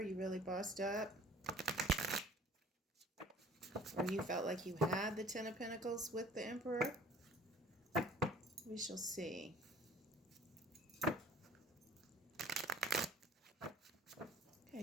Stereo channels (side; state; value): both; normal; correlation 0.50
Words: You really bossed up. Or you felt like you had the Ten of Pentacles with the Emperor. We shall see. Okay,